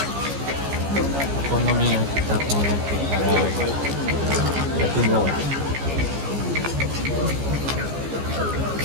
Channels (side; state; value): left; late; 14 ms